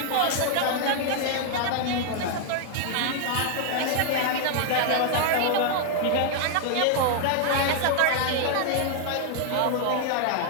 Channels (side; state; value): both; different; correlation 0.00